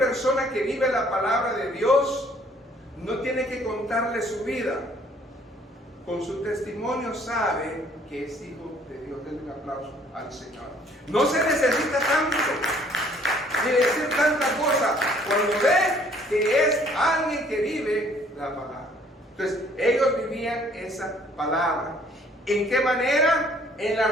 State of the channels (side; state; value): both; normal; correlation 0.60